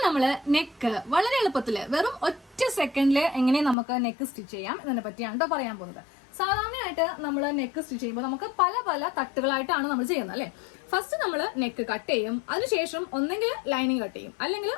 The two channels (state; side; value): drops out; right; at 3.8 s